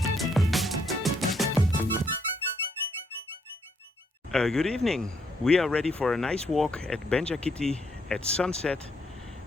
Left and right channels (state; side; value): normal; both; correlation 0.73